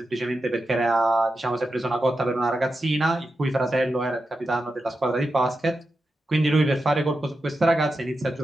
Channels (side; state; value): both; normal; correlation 0.90